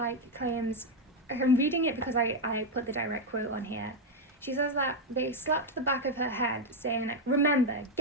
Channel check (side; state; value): both; normal; correlation 0.01